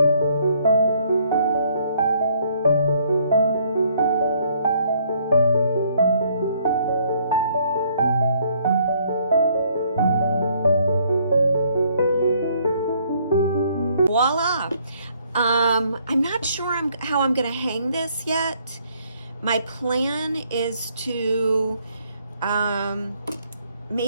Voila! I'm not sure how I'm gonna hang this yet. My plan is to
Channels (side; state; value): both; inverted; correlation -0.66